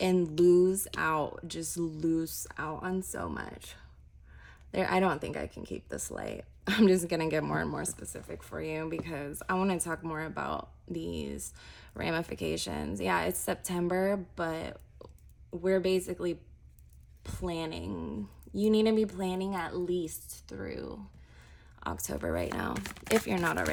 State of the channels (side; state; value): both; identical; correlation 1.00